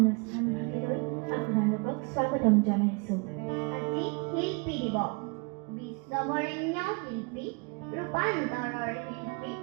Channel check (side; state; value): left; quieter; 32.7 dB